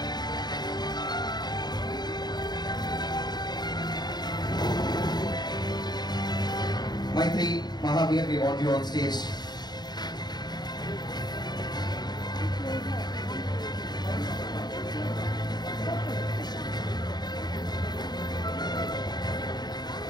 Maitri, Mahavir, we want you on stage.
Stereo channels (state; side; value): late; right; 0.20 ms